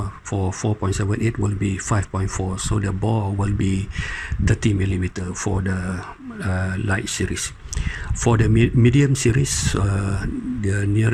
for 4.78 will be 5.4. So the bore will be 30 millimeter for the light series. For the medium series, the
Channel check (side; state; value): both; identical; correlation 1.00